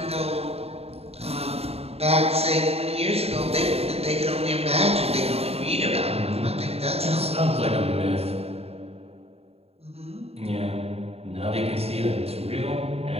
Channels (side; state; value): left; late; 0.29 ms